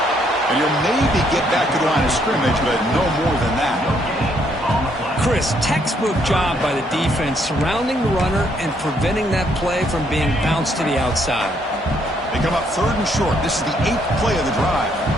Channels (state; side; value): normal; both; correlation 0.71